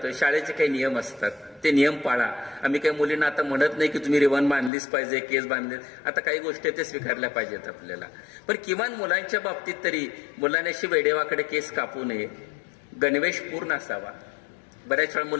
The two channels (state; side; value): drops out; right; at 4.7 s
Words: शाळेचे काही नियम असतात, ते नियम पाळा. आम्ही काही मुलींना आता म्हणत नाही की तुम्ही रिबन बांधलीच पाहिजे, केस बांधले, आता काही गोष्टी ते स्वीकारल्या पाहिजेत आपल्याला. पण किमान मुलांच्या बाबतीत तरी मुलांनी अशी वेडेवाकडे केस कापू नये, गणवेश पूर्ण असावा. बऱ्याच वेळा